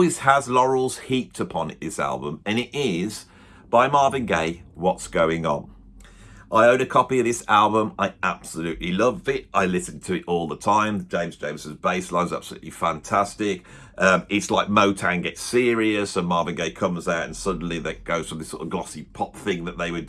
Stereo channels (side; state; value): both; identical; correlation 1.00